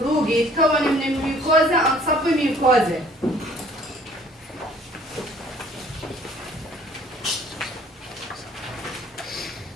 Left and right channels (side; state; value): both; normal; correlation 0.56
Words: rugi يتكون من الميوكوزا and submucosa.